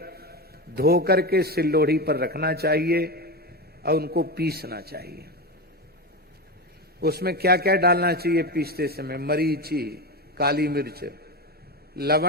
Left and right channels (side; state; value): both; normal; correlation 0.19